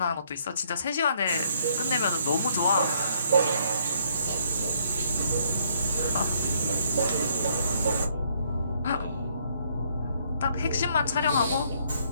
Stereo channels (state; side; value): inverted; both; correlation -0.68